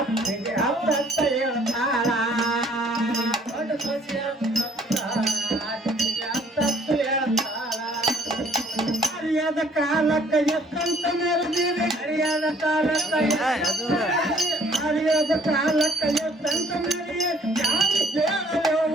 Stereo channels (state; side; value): normal; both; correlation 0.60